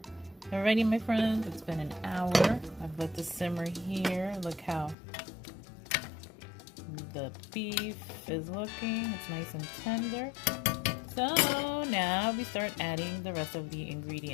Alrighty, my friends, it's been an hour. I've let this simmer here. Look how the beef is looking. It's nice and tender. So now we start adding the rest of the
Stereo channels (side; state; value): right; drops out; at 5.0 s